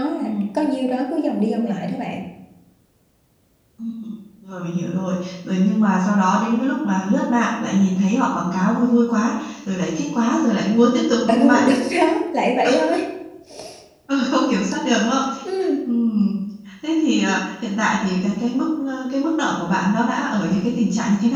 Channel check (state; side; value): identical; both; correlation 1.00